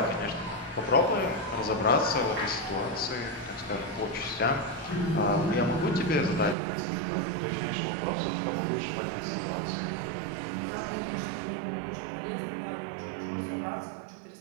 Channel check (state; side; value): drops out; left; at 6.6 s